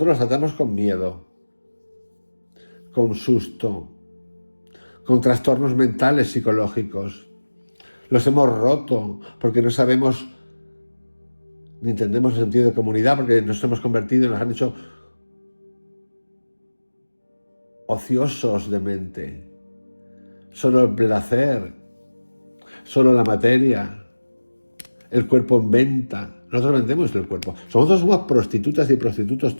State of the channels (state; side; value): inverted; both; correlation -1.00